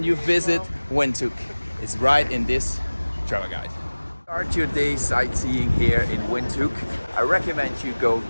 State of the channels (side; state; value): both; inverted; correlation -1.00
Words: you visit Windhoek is right in this travel guide. Start your day sightseeing here in Windhoek. I recommend you go